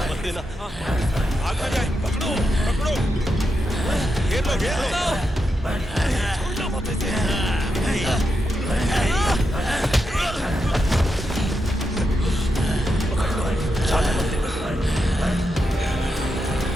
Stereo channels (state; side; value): normal; both; correlation 0.86